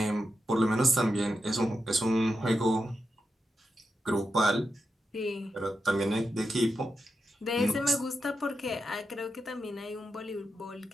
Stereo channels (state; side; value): normal; both; correlation 0.87